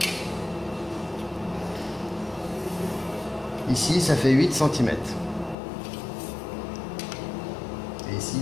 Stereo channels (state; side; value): drops out; right; at 5.6 s